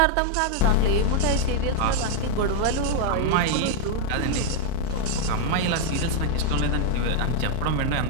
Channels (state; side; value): different; both; correlation 0.00